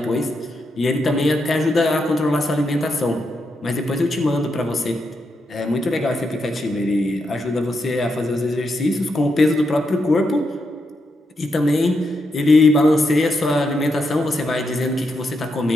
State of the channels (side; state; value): both; normal; correlation 0.83